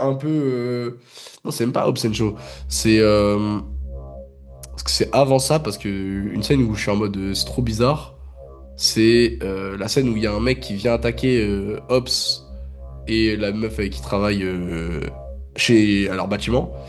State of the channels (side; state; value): both; identical; correlation 1.00